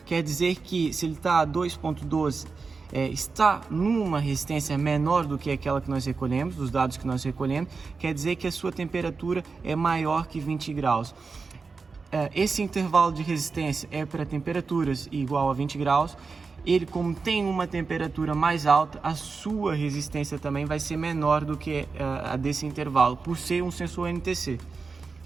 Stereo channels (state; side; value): quieter; left; 4.6 dB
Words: quer dizer que se ele está a 2.12, está numa resistência menor do que aquela que nós recolhemos, dos dados que nós recolhemos, quer dizer que a sua temperatura é maior que 20 graus. Esse intervalo de resistência é para temperaturas igual a 20 graus. Ele, como tem uma temperatura mais alta, a sua resistência também vai ser menor do que a desse intervalo, por ser um sensor NTC.